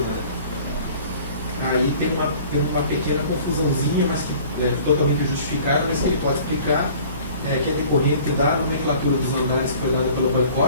Aí tem uma pequena confusãozinha, mas que é totalmente justificada, mas que ele pode explicar, que é decorrente da nomenclatura dos andares que foi dada pelo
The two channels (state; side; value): inverted; both; correlation -0.48